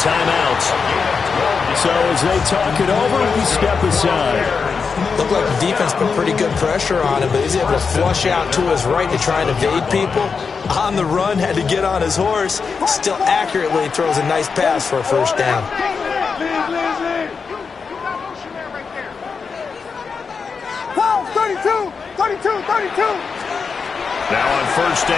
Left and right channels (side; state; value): right; quieter; 5.4 dB